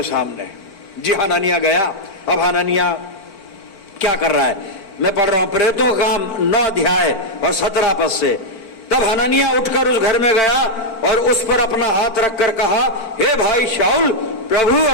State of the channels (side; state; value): right; late; 4.5 ms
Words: सामने। जी हननिया गया। अब हननिया क्या कर रहा है, मैं पढ़ रहा हूं प्रेरितों का काम 9 अध्याय और 17 पद से। तब हननिया उठकर उस घर में गया और उस पर अपना हाथ रखकर कहा, हे भाई शाऊल, प्रभु